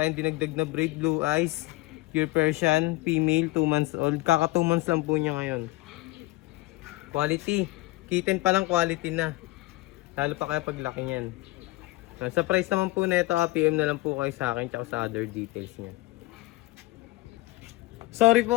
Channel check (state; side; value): quieter; right; 20.7 dB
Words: dinagdag na braid, blue eyes, pure Persian, female, 2 months old. Kaka 2 months lang po niya ngayon. Quality. Kitten pa lang quality na. Lalo pa kaya paglaki niyan. Sa price naman po na ito, PM na lang po kayo sa akin tsaka sa other details niya. Sorry po